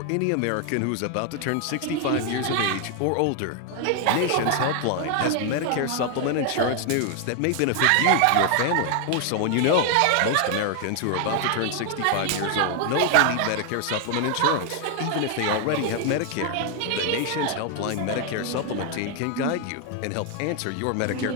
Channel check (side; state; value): both; different; correlation 0.00